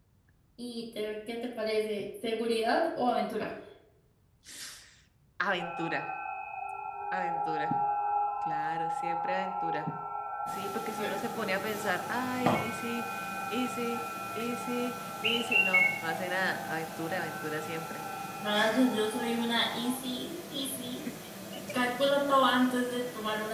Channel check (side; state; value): both; identical; correlation 1.00